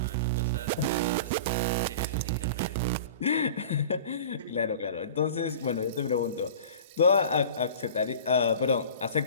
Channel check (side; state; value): both; inverted; correlation -0.39